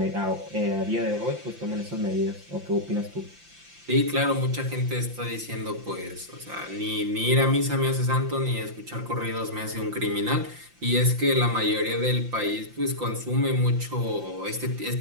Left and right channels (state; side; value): late; left; 5.8 ms